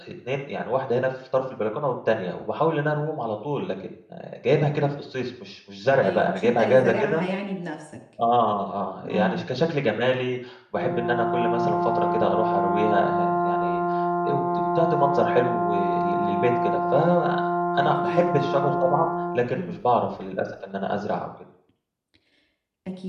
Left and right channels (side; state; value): both; identical; correlation 1.00